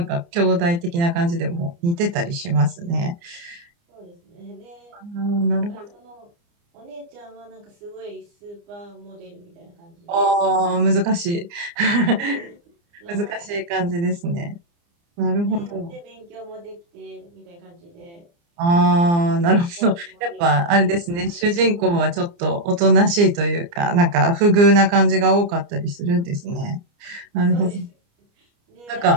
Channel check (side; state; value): left; late; 29 ms